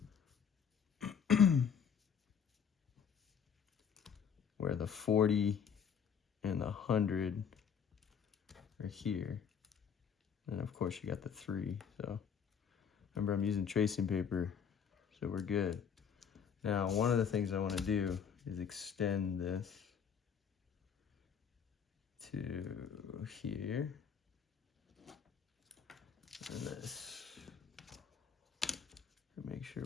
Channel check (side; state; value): right; quieter; 7.2 dB